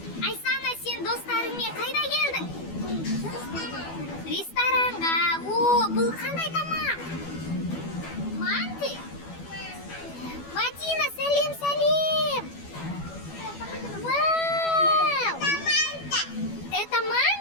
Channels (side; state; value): right; late; 12 ms